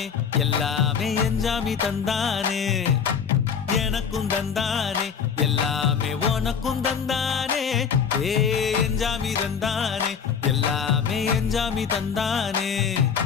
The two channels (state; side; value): quieter; right; 6.8 dB